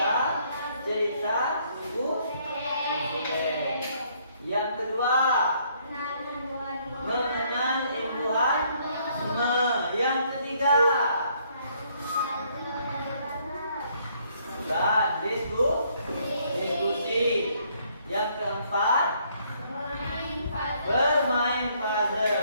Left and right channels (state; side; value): inverted; both; correlation -0.67